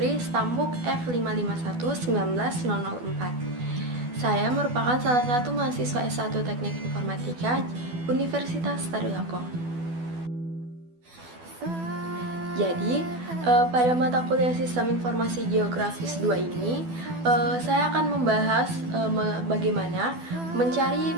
Stambuk F551-19004. Saya merupakan salah satu mahasiswa S1 Teknik Informatika Universitas Tadulako. Jadi, pada mata kuliah Sistem Informasi Geografis 2 ini, saya akan membahas bagaimana mencari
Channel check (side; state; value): left; late; 12 ms